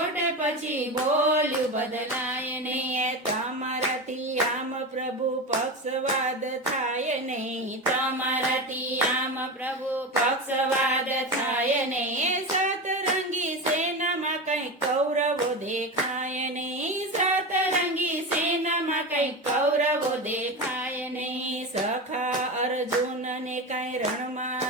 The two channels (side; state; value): both; normal; correlation 0.22